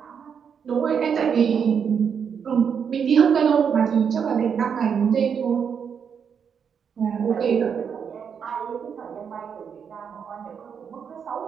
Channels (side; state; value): left; quieter; 7.1 dB